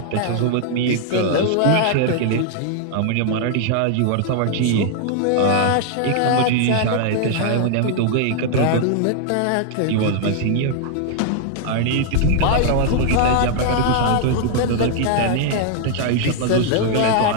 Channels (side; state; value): both; different; correlation 0.00